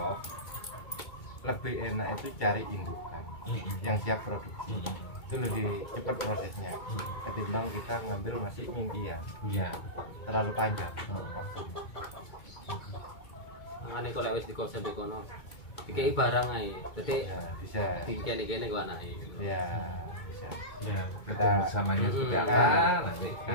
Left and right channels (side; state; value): right; late; 2.2 ms